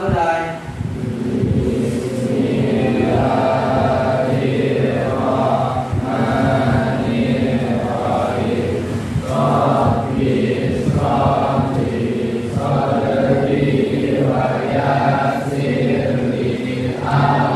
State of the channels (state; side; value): identical; both; correlation 1.00